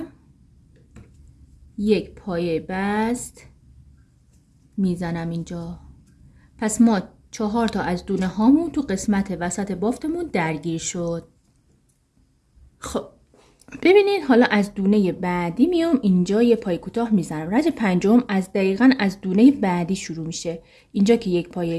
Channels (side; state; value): both; identical; correlation 1.00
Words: یک پایه بست میزنم اینجا. پس ما 4 تا از دونه هامون تو قسمت وسط بافتمون درگیر شد. خب ببینید حالا از دونه بعدی میام اینجا یه پای کوتاه میزنم. رج پنجم از دقیقاً از دونه بعدی شروع میشه. اینجا که یک پای